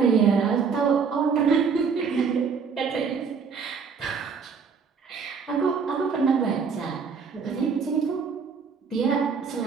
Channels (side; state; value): left; quieter; 5.8 dB